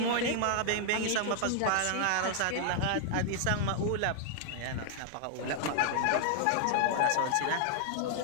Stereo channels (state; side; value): different; both; correlation 0.00